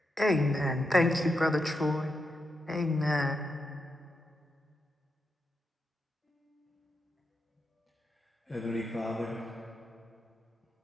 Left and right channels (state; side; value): normal; both; correlation 0.85